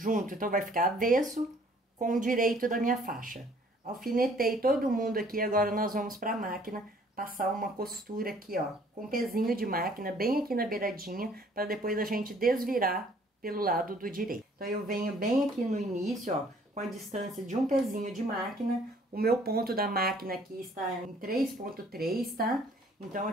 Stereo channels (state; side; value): normal; both; correlation 0.58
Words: Então, vai ficar avesso com o direito da minha faixa. Alfinetei todo mundo aqui, agora nós vamos para a máquina passar uma costura aqui, ó, com pezinho de máquina, bem aqui na beiradinha, para depois a gente desvirar pelo lado do direito. Então, eu venho bem aqui no início, ó, com a distância de um pezinho de máquina. O meu ponto da máquina aqui está em 3,3, tá? Então,